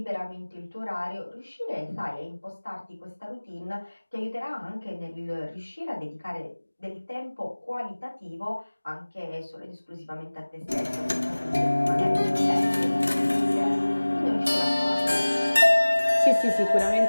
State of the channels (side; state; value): both; inverted; correlation -1.00